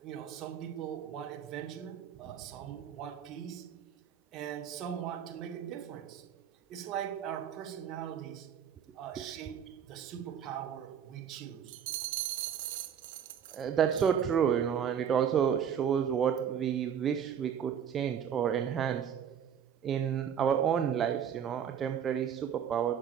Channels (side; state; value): left; quieter; 8.4 dB